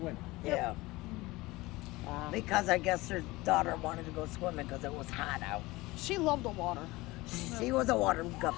Yeah. Because I guess her daughter wanted to go swimming because it was hot out. She loved the water. She was a water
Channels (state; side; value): quieter; right; 20.7 dB